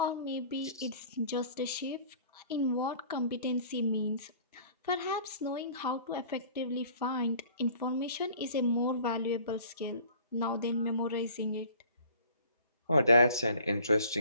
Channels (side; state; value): both; inverted; correlation -0.50